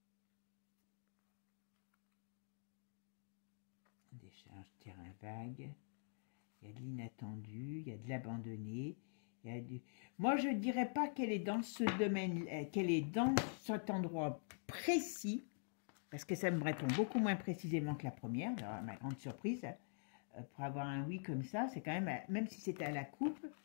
Décharge, terrain vague. Il y a de l'inattendu, il y a de l'abandonné. Moi, je ne dirais pas qu'elle est dans ce domaine, qu'elle est dans cet endroit précis, parce que ça me répond beaucoup moins précisément que la première, alors, ma grande surprise, pour avoir un oui comme ça, c'est quand même si c'était à la coupe,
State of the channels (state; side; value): silent; right; digital silence